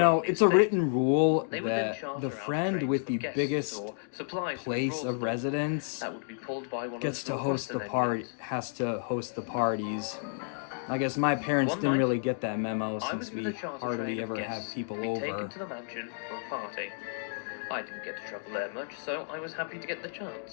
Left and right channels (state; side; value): silent; right; digital silence